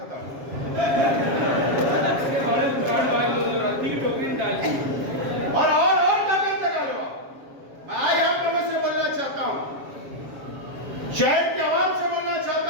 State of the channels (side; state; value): left; late; 7.3 ms